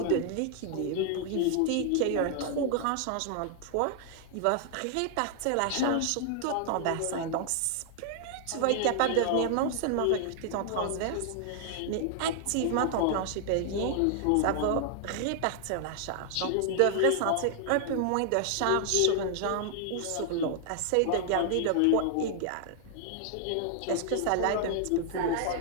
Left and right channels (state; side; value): different; both; correlation 0.00